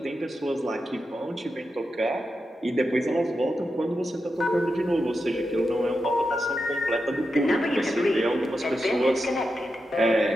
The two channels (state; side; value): normal; both; correlation 0.88